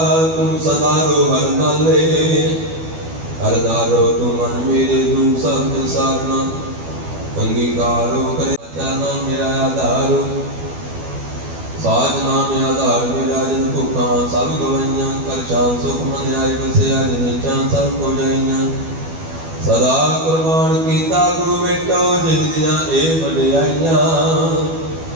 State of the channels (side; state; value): left; late; 12 ms